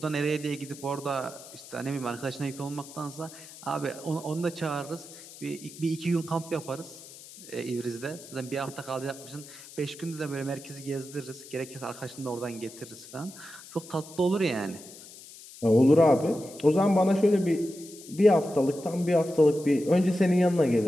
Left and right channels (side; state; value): left; noise; hiss, 17 dB below the sound